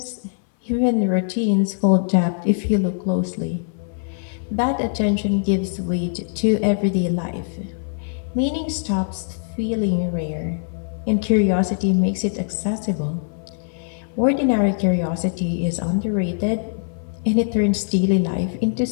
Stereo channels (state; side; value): silent; right; 61 dB below the other